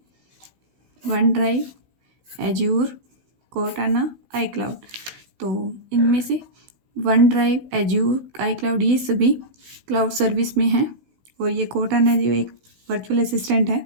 वन ड्राइव, एज्योर, कोर्टाना, आई क्लाउड। तो इनमें से वन ड्राइव, एज्योर, आई क्लाउड ये सभी क्लाउड सर्विस में हैं। और ये कोर्टाना जो एक वर्चुअल असिस्टेंट है,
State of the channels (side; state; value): left; late; 16 ms